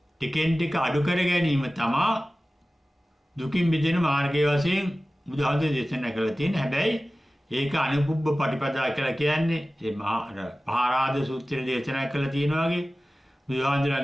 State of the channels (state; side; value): normal; both; correlation 0.96